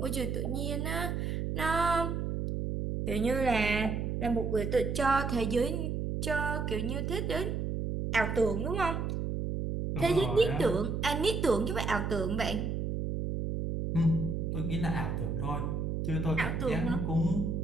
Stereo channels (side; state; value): right; noise; hum, 1 dB below the sound